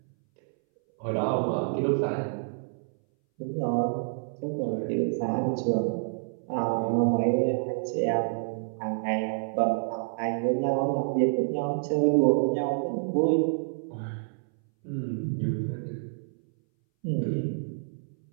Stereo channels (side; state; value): left; silent; 59 dB below the other